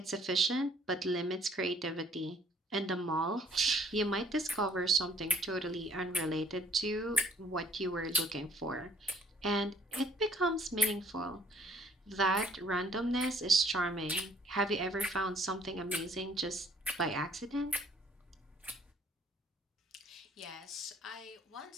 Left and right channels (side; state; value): both; normal; correlation 0.61